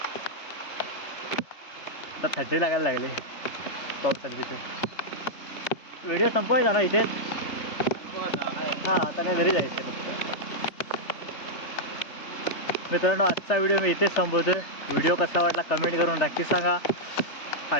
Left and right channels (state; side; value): late; right; 3.3 ms